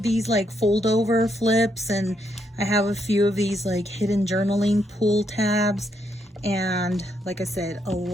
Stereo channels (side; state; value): both; normal; correlation 0.77